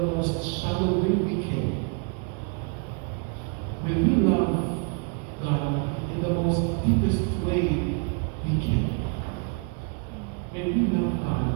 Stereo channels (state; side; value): quieter; left; 35.4 dB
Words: most shallow way we can. May we love God in the most deepest way we can. May we love